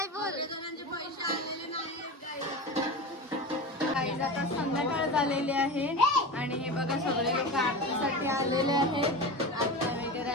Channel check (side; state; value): both; normal; correlation 0.27